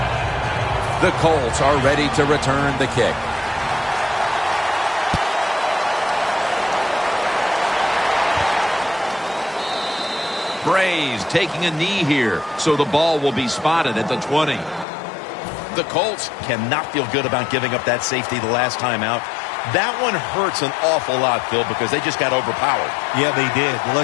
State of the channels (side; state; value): right; drops out; at 14.9 s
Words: The Colts are ready to return the kick. Brays taking a knee here, so the ball will be spotted at the 20. The Colts cannot feel good about giving up that safety the last time out. That one hurts an awful lot, Phil, because they just got overpowered. Yeah, they did. Well,